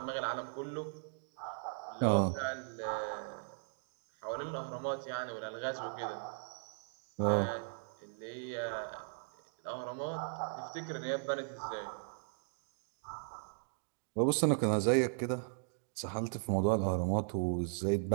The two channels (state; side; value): silent; left; digital silence